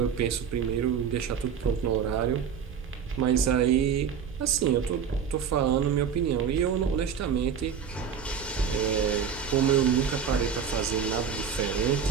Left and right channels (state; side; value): quieter; left; 7.3 dB